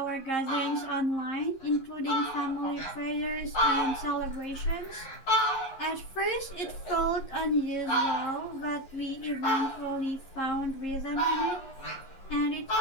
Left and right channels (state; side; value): late; right; 11 ms